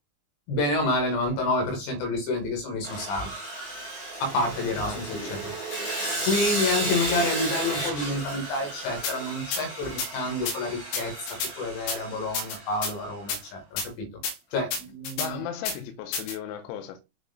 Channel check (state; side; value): late; right; 21 ms